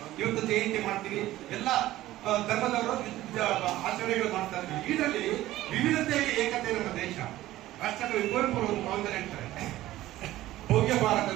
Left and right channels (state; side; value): quieter; left; 15.5 dB